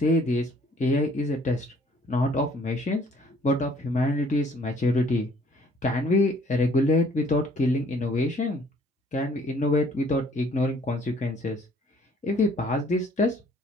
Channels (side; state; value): both; normal; correlation 0.59